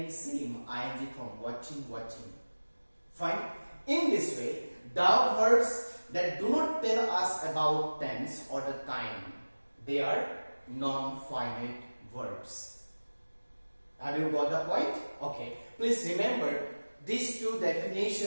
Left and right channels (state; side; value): inverted; both; correlation -1.00